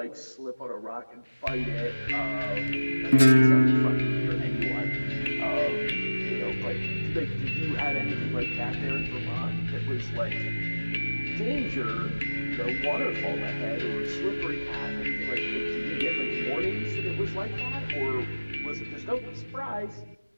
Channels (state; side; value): inverted; both; correlation -1.00